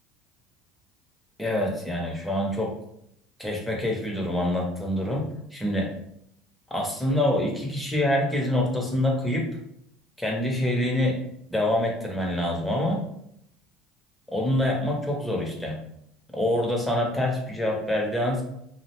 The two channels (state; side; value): normal; both; correlation 0.60